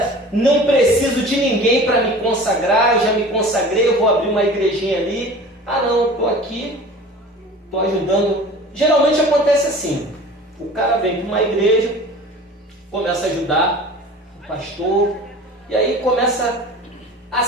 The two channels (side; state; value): both; normal; correlation 0.41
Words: de ninguém para me consagrar, eu já me consagrei, eu vou abrir uma igrejinha ali. Não, estou aqui, estou ajudando. Geralmente acontece assim, o cara vem para uma igreja, começa a ajudar o pastor, e aí começa a